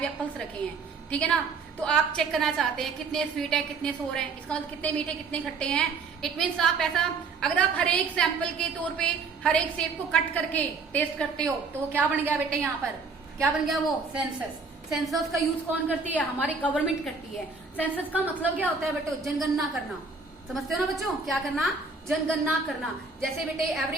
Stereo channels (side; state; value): left; quieter; 4.5 dB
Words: एप्पल्स रखे हैं, ठीक है ना। तो आप चेक करना चाहते हैं कितने स्वीट है कितने सोर है, इसका मतलब कितने मीठे कितने खट्टे हैं। इट मीन्स आप ऐसा, अगर आप हर एक सैंपल के तौर पे हर एक सेब को कट करके टेस्ट करते हो तो क्या बन गया बेटे, यहाँ पर क्या बन गया, वो सेंसस। सेंसस का यूज कौन करती है, हमारी गवर्नमेंट करती है। सेंसस का मतलब क्या होता है बेटे, जनगणना करना। समझते हो ना बच्चों, क्या करना, जनगणना करना। जैसे बेटे